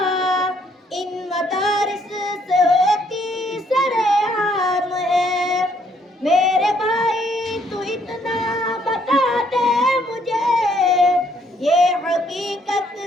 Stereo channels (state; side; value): normal; both; correlation 0.67